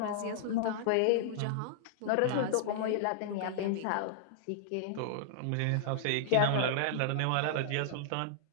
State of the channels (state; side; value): different; both; correlation -0.01